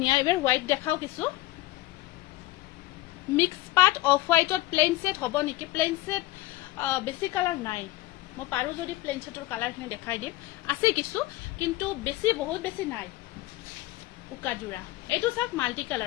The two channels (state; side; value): quieter; right; 17.7 dB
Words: এবাৰ হোৱাইট দেখাও কিছু মিক্স পার্ট অফ হোয়াইটত প্লেন সেট হব নেকি প্লেন সেট বেছি কালার নাই মো পারু যদি প্লেন সেটৰ কালাৰ খিনি দেখাই দিম আছে কিছু কিন্তু বেছি বহুত বেছি নাই উকাজুৰা এটো সব মাল্টি